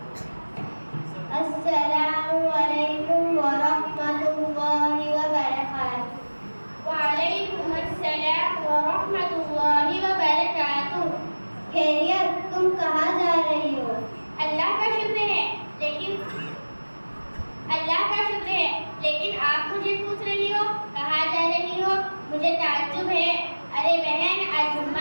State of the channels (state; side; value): inverted; both; correlation -1.00